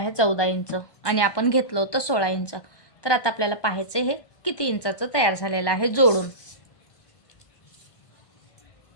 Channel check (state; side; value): late; right; 1.2 ms